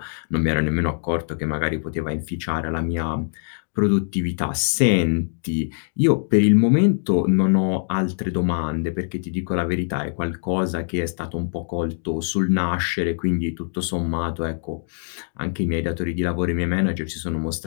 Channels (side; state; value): right; silent; digital silence